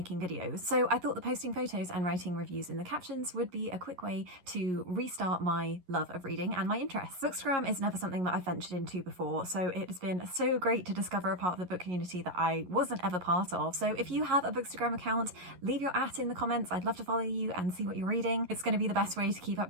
videos. So I thought that posting photos and writing reviews in the captions would be a quick way to restart my love of reading and my interests. Bookstagram is never something that I've ventured into before, so it has been so great to discover a part of the book community that I wasn't ever part of. So if you have a Bookstagram account, leave your @ in the comments. I'd love to follow you and see what you're reading. It's going to be the best way to keep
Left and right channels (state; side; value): late; left; 11 ms